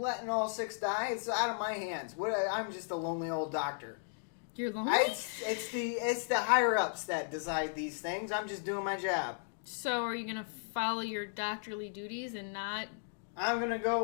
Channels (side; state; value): right; silent; digital silence